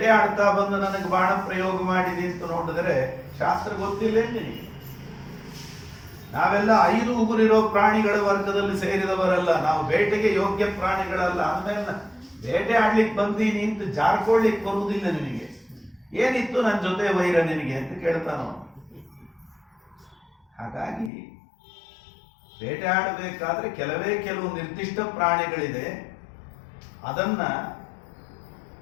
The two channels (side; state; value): right; drops out; at 21.1 s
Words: ಆಡ್ತಾ ಬಂದು ನನಗೆ ಬಾಣ ಪ್ರಯೋಗ ಮಾಡಿದಿ ಅಂತ ನೋಡಿದರೆ ಶಾಸ್ತ್ರ ಗೊತ್ತಿಲ್ಲ ನಿನಗೆ. ನಾವೆಲ್ಲ 5 ಉಗುರಿರೋ ಪ್ರಾಣಿಗಳ ವರ್ಗದಲ್ಲಿ ಸೇರಿದವರಲ್ಲ, ನಾವು ಬೇಟೆಗೆ ಯೋಗ್ಯ ಪ್ರಾಣಿಗಳಲ್ಲ. ಅಂದ್ಮೇಲೆ ಬೇಟೆ ಆಡ್ಲಿಕ್ಕೆ ಬಂದೀನಿ ಅಂತ ಜಾರ್ಕೊಳ್ಳಿಕ್ಕೆ ಬರುವುದಿಲ್ಲ ನಿನಗೆ. ಏನಿತ್ತು ನನ್ನ ಜೊತೆ ವೈರ ನಿನಗೆ ಅಂತ ಕೇಳ್ತಾನೋ. ಹಾಗಾಗಿ ಬೇಟೆ ಆಡಬೇಕಾದ್ರೆ ಕೆಲವು ನಿರ್ದಿಷ್ಟ ಪ್ರಾಣಿಗಳಿದೆ. ಅದನ್ನ